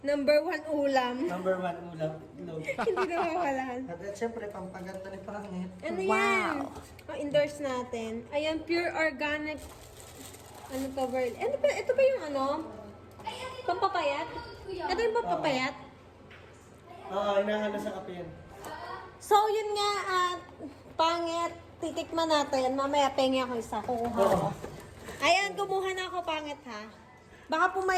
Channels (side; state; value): both; identical; correlation 1.00